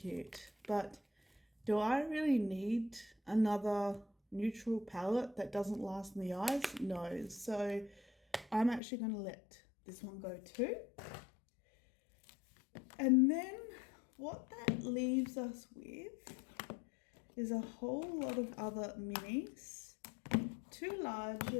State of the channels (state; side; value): drops out; right; at 8.8 s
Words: but do I really need another neutral palette that doesn't last in the eyes? No. So I'm actually going to let this one go too. And then what that leaves us with is a whole lot of other minis, 2